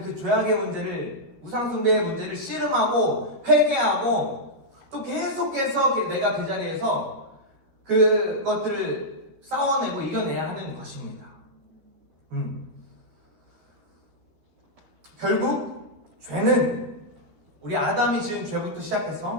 그 죄악의 문제를, 우상숭배의 문제를 씨름하고 회개하고 또 계속해서 내가 그 자리에서 그것들을 싸워내고 이겨내야 하는 것입니다. 결국 죄는 우리 아담이 지은 죄부터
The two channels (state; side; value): late; left; 12 ms